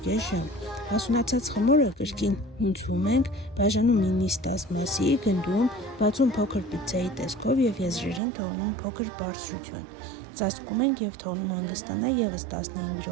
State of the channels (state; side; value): drops out; left; at 8.2 s